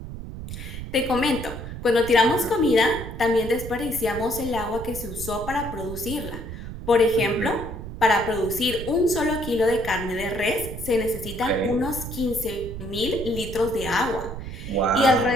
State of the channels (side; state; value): right; noise; rumble, 9 dB below the sound